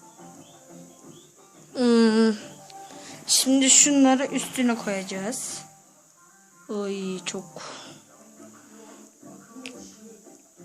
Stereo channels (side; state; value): both; identical; correlation 1.00